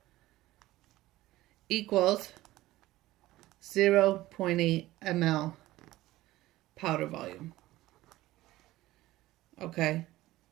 equals 0.8 ml powder volume. Okay.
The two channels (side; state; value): left; quieter; 16.8 dB